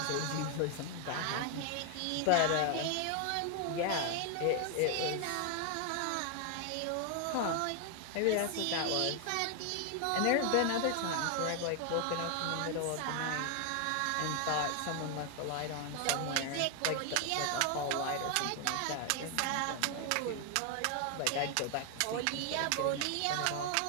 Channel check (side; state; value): both; different; correlation 0.00